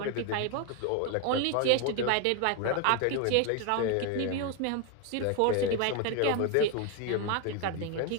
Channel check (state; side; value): different; both; correlation 0.01